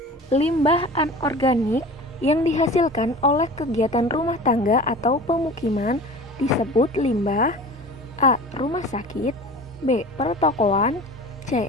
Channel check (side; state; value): both; normal; correlation 0.38